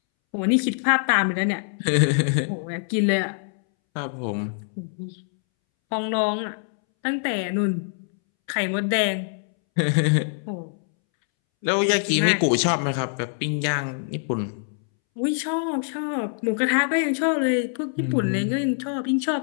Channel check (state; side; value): silent; right; 63 dB below the other